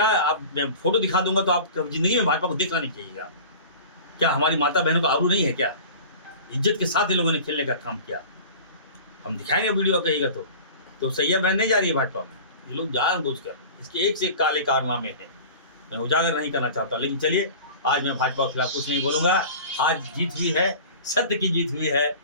आप, मैं फोटो दिखा दूंगा तो आप जिंदगी में भाजपा को देखना नहीं चाहिएगा। क्या हमारी माता बहनों का आबरू नहीं है क्या? इज्जत के साथ इन लोगों ने खेलने का काम किया। हम दिखाएंगे वीडियो कहेगा तो सैया बहन नहीं जा रही है भाजपा में। ये लोग जानबूझकर इसके एक से एक काले कारनामे हैं, मैं उजागर नहीं करना चाहता। लेकिन चलिए, आज मैं भाजपा के खिलाफ कुछ नहीं बोलूँगा। आज जीत हुई है, सत्य की जीत हुई है।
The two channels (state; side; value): inverted; both; correlation -0.39